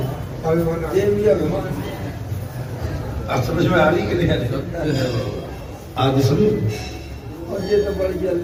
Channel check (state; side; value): identical; both; correlation 1.00